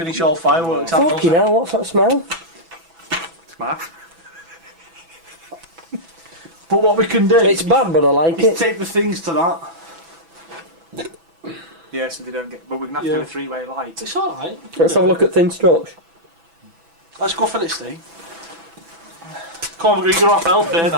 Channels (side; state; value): left; late; 6.0 ms